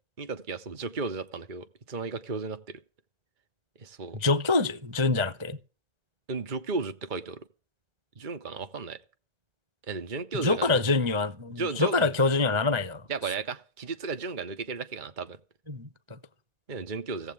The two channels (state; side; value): late; left; 1.4 ms